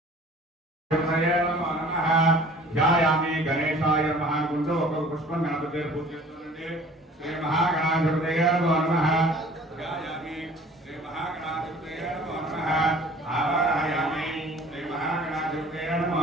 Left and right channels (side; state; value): both; normal; correlation 0.49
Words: ధ్యాయామి గణేశాయ నమః అనుకుంటూ ఒక్కొక్క పుష్పం గణపతి పూజ చేస్తుండండి. శ్రీ మహాగణాధిపతయే నమః. ధ్యాయామి శ్రీ మహాగణాధిపతయే నమః. ఆవాహయామి శ్రీ మహాగణాధిపతయే